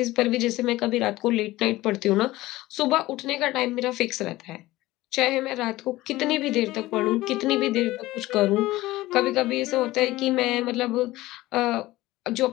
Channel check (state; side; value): quieter; right; 17.7 dB